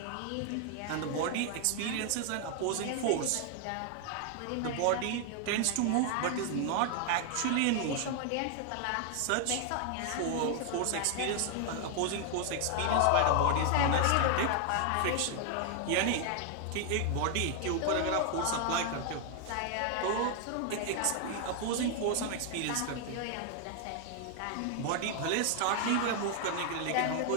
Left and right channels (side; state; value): both; different; correlation 0.00